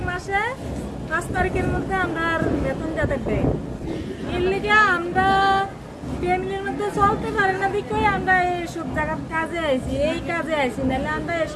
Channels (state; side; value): identical; both; correlation 1.00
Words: মাসে 5 তারিখের মধ্যে আমরা বেতন যাতে দেয় এর লিগে আমরা ফ্যামিলির মধ্যে চলতে পারি না দেখে আমরা এইসব জায়গার কাজে আইছি এই কাজে আইছি নাহলে আমরা